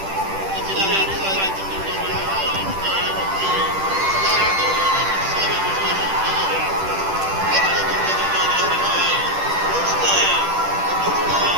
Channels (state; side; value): late; left; 10 ms